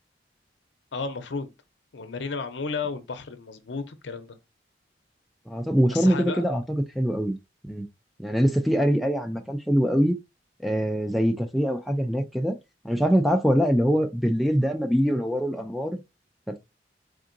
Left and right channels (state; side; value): normal; both; correlation 0.91